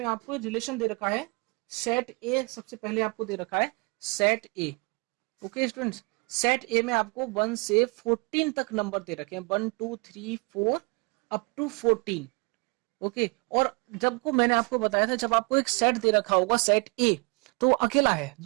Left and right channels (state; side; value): quieter; left; 31.0 dB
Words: आपको रिलेशन दे रखा है सेट ए। सबसे पहले आपको दे रखा है सेट ए। ओके स्टूडेंट्स, सेट ए में आपको 1 से 14 तक नंबर दे रखे हैं, 1 2 3 4 अप टू 14। ओके, और जब को मैंने आपको बताया था, जब आपको एक सेट दे रखा होगा सेट ए, तो अकेला है,